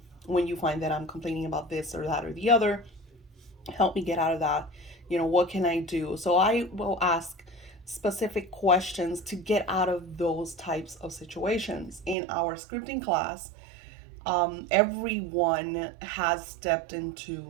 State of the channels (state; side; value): drops out; left; at 12.2 s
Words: When you find that I'm complaining about this or that or the other, help me get out of that. What can I do? So I will ask specific questions to get out of those types of situations. In our scripting class, everyone has stepped